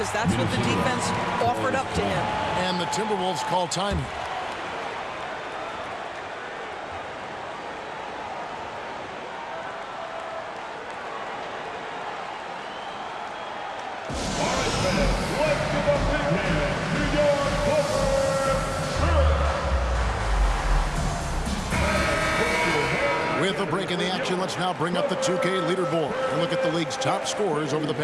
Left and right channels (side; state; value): both; identical; correlation 1.00